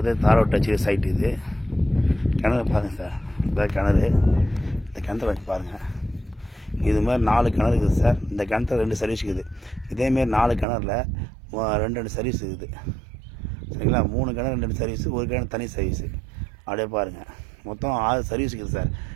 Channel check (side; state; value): left; drops out; at 10.7 s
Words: தாரோட்டு வச்சு சைட்டு இது. கிணறு பாருங்கள் சார். இதான் கிணறு. இந்த கிணத்துல வச்சு பாருங்கள். இது மாதிரி 4 கிணறு இருக்குது சார். இந்த கிணத்துல 2 சர்வீஸ் இருக்குது. இதேமாரி 4 கிணறுல 2 சர்வீஸ் இருக்குது. சரிங்களா? 3 கிணறு 2 சர்வீஸு, ஒரு கிணறு தனி சர்வீஸு. அப்படியே பாருங்கள். மொத்தம் 6 சர்வீஸ் இருக்குது சார்.